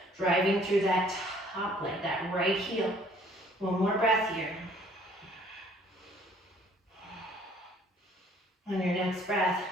driving through that top leg, that right heel. One more breath here. On your next breath,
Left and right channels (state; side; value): normal; both; correlation 0.58